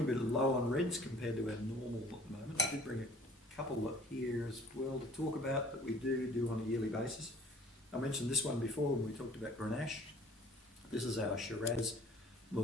low on reds compared to our normal at the moment. I did bring a couple up here as well to talk about that we do on a yearly basis. I mentioned this one before when we talked about Grenache. This is our Shiraz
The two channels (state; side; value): normal; both; correlation 0.52